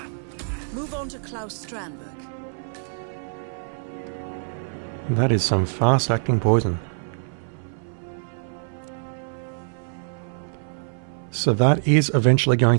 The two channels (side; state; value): left; silent; 60 dB below the other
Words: Move on to Klaus Strandberg. That is some fast-acting poison. So that is eventually